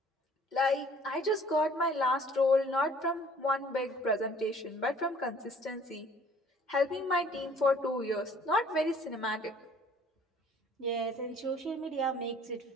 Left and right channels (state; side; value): normal; both; correlation 0.55